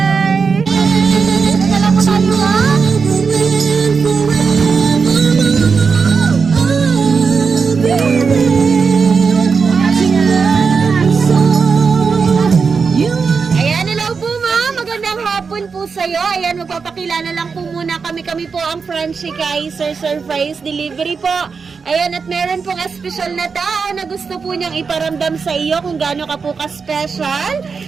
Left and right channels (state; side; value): quieter; left; 5.3 dB